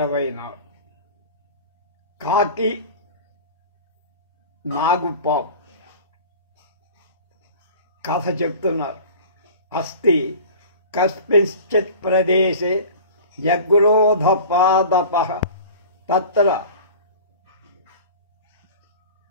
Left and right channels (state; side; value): inverted; both; correlation -0.39